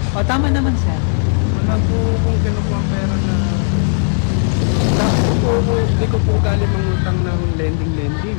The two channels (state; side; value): silent; right; 59 dB below the other